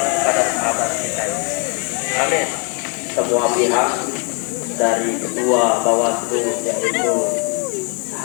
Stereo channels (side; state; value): right; quieter; 36.3 dB